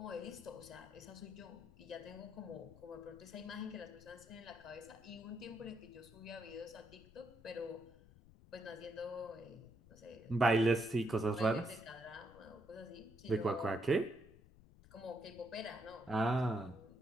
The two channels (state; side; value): noise; left; rumble, 22 dB below the sound